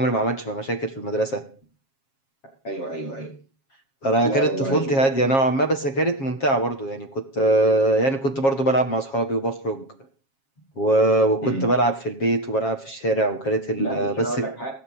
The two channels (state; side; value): late; right; 7.4 ms